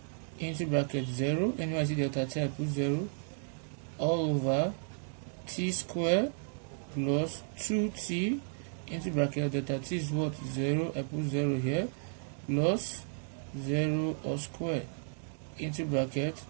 into bracket 0. Anyway I see delta t, I put 0 all over t square plus 2t into bracket delta t is what? 0. I put 0 here plus 0 all square into bracket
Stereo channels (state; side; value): silent; left; digital silence